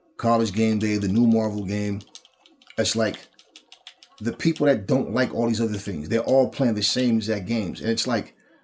College Game Day, the new Marvel game. It's like the people that don't like all these other things, they're all playing the same exact games. And it's like,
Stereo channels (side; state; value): both; identical; correlation 1.00